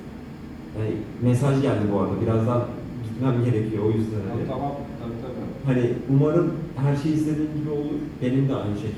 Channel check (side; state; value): both; identical; correlation 1.00